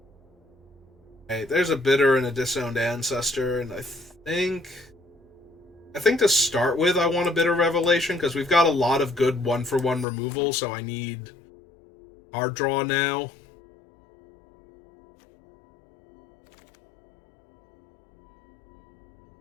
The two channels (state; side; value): drops out; right; at 10.1 s